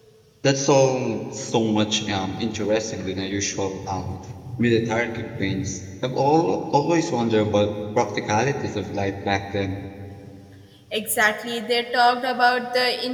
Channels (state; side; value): identical; both; correlation 1.00